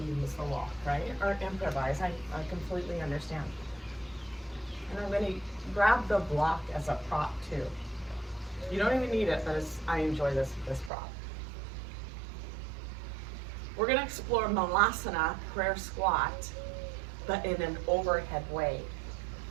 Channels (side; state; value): left; drops out; at 10.9 s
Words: the walk, right? Or improvise, I completely understand. And I'm gonna grab the block as a prop too. You don't even need it, but I enjoy this prop. We're gonna explore Malasana, prayer squat, but in an overhead way,